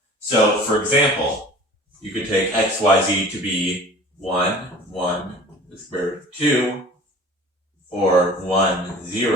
So, for example, you could take x, y, z to be 1, the square root of 2, or 1,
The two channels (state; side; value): normal; both; correlation 0.44